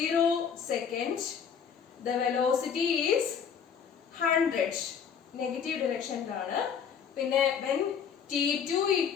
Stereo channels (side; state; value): right; quieter; 7.2 dB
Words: seconds, the velocity is 100 negative ഡിറക്ഷനിലാണ്. പിന്നെ when T2